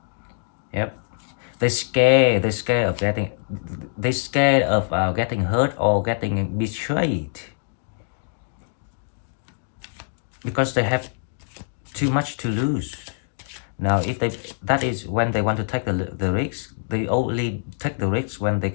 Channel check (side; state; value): right; silent; digital silence